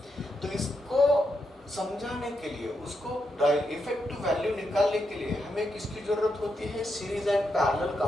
तो इसको समझाने के लिए, उसको इफेक्टिव वैल्यू निकालने के लिए हमें किसकी जरूरत होती है, series and parallel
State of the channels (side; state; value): both; normal; correlation 0.83